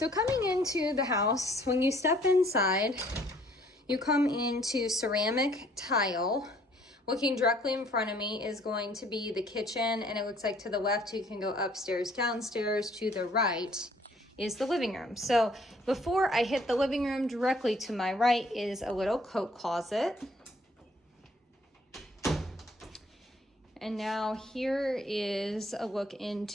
coming into the house, when you step inside, you come into ceramic tile. Looking directly in front of me is going to be the kitchen, and it looks like to the left you can go upstairs, downstairs. To the right is the living room. So before I hit the living room, directly to my right is a little coat closet. And now here is a look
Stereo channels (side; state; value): both; normal; correlation 0.60